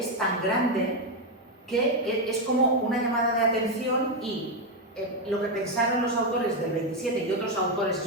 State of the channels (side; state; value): both; normal; correlation 0.05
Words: tan grande que es como una llamada de atención, y lo que pensaron los autores del 27 y otros autores